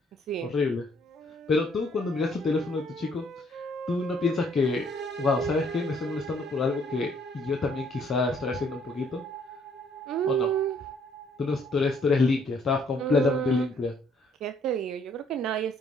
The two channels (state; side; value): normal; both; correlation 0.65